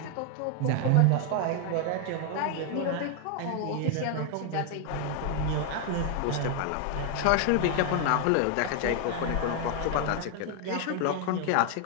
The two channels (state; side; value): different; both; correlation 0.01